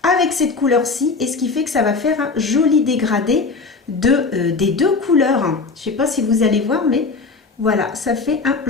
avec cette couleur-ci, et ce qui fait que ça va faire un joli dégradé des deux couleurs. Je ne sais pas si vous allez voir, mais voilà, ça fait un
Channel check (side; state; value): right; quieter; 4.2 dB